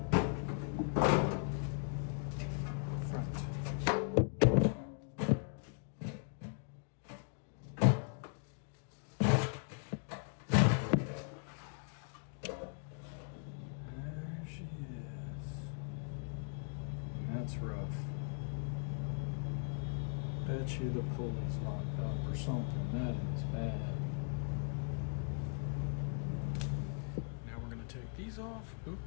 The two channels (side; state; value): right; silent; 52 dB below the other